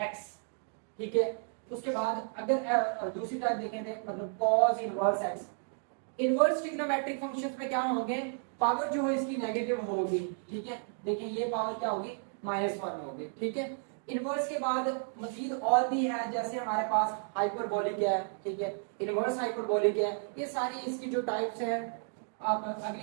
x। ठीक है, उसके बाद अगर दूसरी टाइप देखें थे मतलब cos inverse x। Inverse trigonometric functions में क्या होंगे, पावर जो है इसकी नेगेटिव होगी। ठीक है, देखिए ये पावर क्या होगी, -1 होगी। ठीक है, इनवर्स के बाद मजीद और भी है, जैसे हमारे पास हाइपरबोलिक है। ठीक है, इनवर्स हाइपरबोलिक है, ये सारी इसकी जो टाइप्स है। आप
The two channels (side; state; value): left; silent; 56 dB below the other